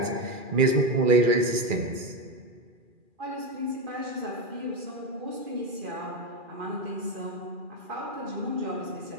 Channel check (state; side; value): late; left; 2.4 ms